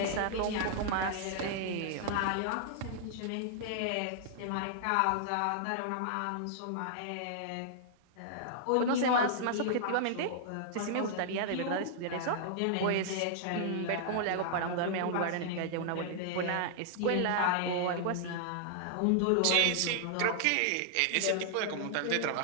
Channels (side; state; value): both; different; correlation -0.01